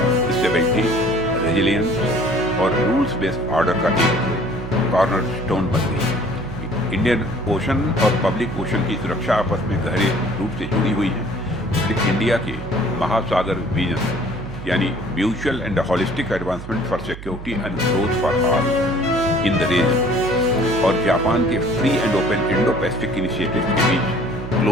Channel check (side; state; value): right; noise; hum, 12 dB below the sound